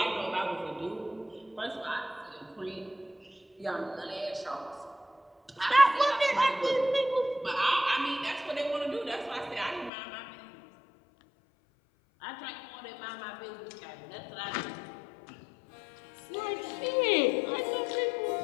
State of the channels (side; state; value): right; drops out; at 9.9 s